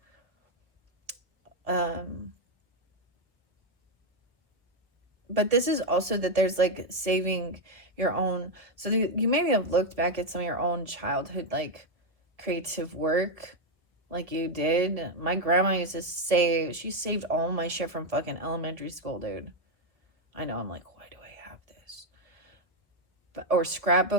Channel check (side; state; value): left; late; 1.3 ms